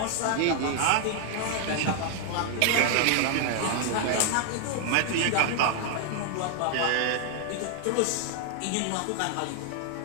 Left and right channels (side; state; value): both; different; correlation 0.00